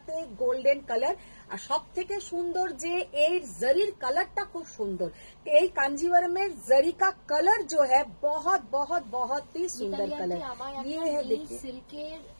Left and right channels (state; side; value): inverted; both; correlation -1.00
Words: গোল্ডেন কালার, আর সব থেকে সুন্দর যে এই জরির কালারটা খুব সুন্দর। এই कांजीवरम जरी का कलर जो है बहुत बहुत बहुत ही सुंदर कलर। ये है देखिए সিল্কের